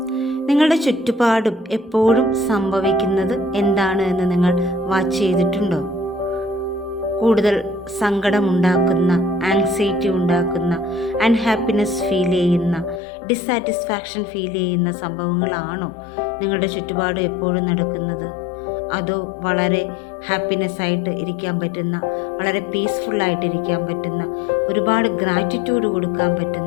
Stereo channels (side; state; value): right; drops out; at 13.0 s